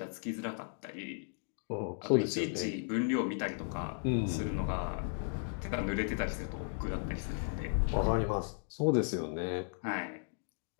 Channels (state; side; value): silent; right; digital silence